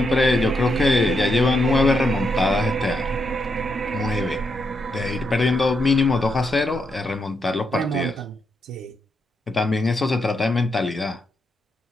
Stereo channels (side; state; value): both; normal; correlation 0.81